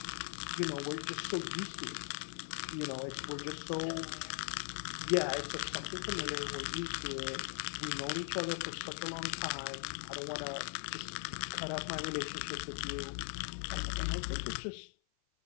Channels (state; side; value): silent; right; 51 dB below the other